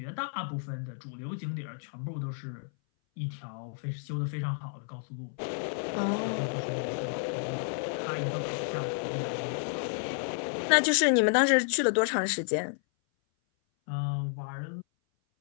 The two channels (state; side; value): silent; right; 57 dB below the other